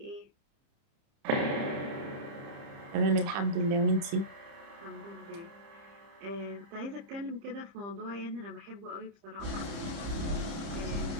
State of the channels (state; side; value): late; left; 30 ms